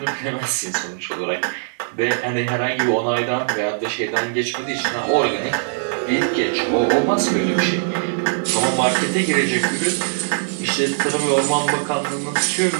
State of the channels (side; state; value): left; silent; digital silence